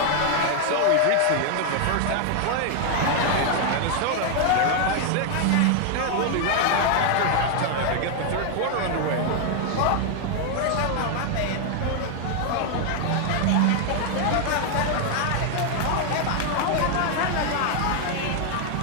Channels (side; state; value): both; different; correlation 0.00